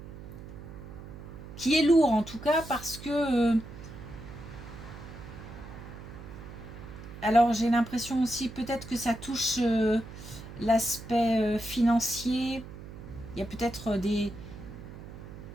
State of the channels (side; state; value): right; noise; hum, 13 dB below the sound